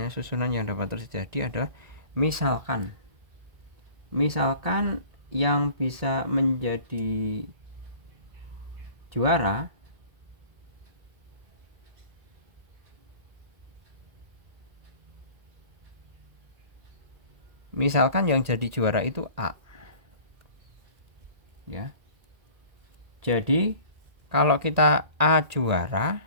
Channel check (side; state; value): left; late; 1.8 ms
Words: susunan yang dapat terjadi adalah misalkan yang bisa menjadi juara itu A ya. Jadi kalau kita A juara